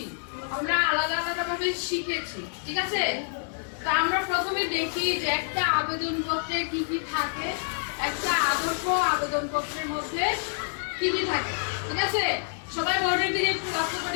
আমরা আলাদা আলাদা ভাবে শিখেছি, ঠিক আছে? তো আমরা প্রথমে দেখি যে একটা আবেদন পত্রে কি কি থাকে, একটা আদর্শ আবেদন পত্রের মধ্যে কি কি থাকে, ঠিক আছে? সবাই বোর্ডের দিকে একটু লক্ষ্য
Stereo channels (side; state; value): right; silent; digital silence